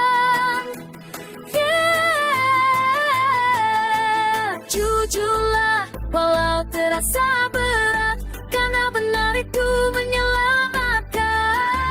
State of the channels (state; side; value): identical; both; correlation 1.00